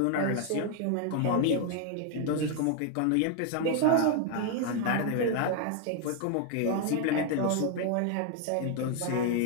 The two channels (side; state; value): both; different; correlation 0.00